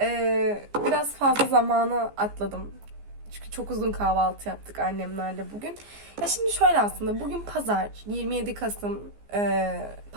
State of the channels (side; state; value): left; late; 15 ms